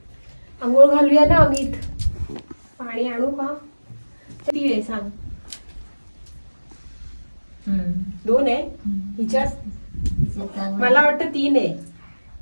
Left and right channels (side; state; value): both; inverted; correlation -1.00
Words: आंघोळ घालूया ना अमित. पाणी आणू का? किती आहे सांग? 2 आहे हिच्या. मला वाटतं 3 आहे.